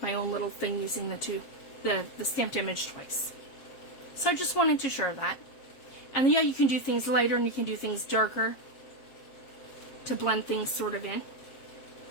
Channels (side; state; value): right; late; 7.4 ms